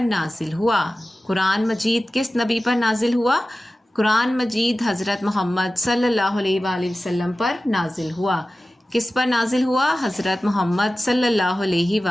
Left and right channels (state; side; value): normal; both; correlation 0.96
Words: नाजिल हुआ? कुरान मजीद किस नबी पर नाजिल हुआ? कुरान मजीद हज़रत मोहम्मद सल्लल्लाहु अलैहि वसल्लम पर नाजिल हुआ। किस पर नाजिल हुआ? हज़रत मोहम्मद सल्लल्लाहु